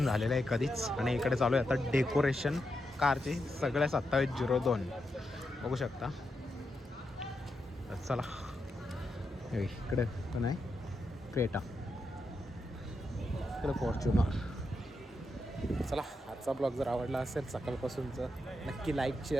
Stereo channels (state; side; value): normal; both; correlation 0.85